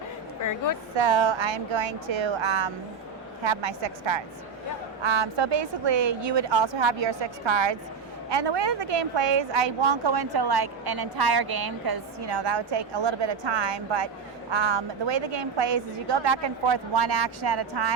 Very good. So I'm going to have my 6 cards. So basically, you would also have your 6 cards. And the way that the game plays, I won't go into like an entire game because, you know, that would take a little bit of time. But the way the game plays is you go back and forth 1 action at a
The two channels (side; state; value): left; quieter; 5.8 dB